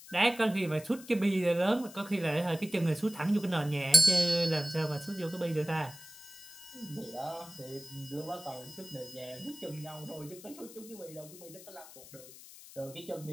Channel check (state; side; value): noise; left; hiss, 17 dB below the sound